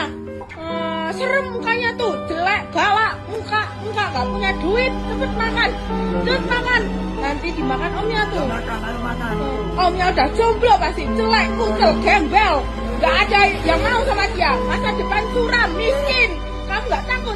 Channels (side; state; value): both; identical; correlation 1.00